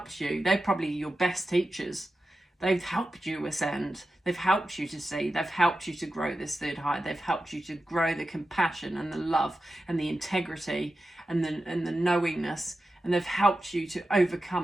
you. They're probably your best teachers. They've helped you ascend. They've helped you to see. They've helped you to grow this third eye. They've helped you to grow the compassion and the love and the integrity and the knowingness. And they've helped you to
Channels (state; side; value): normal; both; correlation 0.92